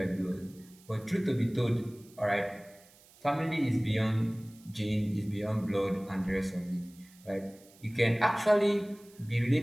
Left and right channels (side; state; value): right; noise; hiss, 26 dB below the sound